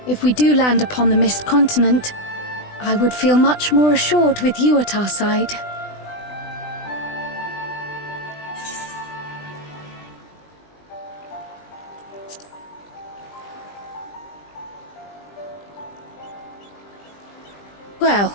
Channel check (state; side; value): late; right; 20 ms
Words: If we do land upon the Mist Continent, I would feel much more assured with you at our side.